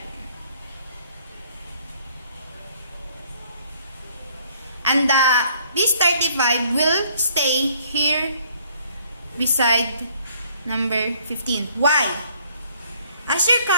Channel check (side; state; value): both; inverted; correlation -0.63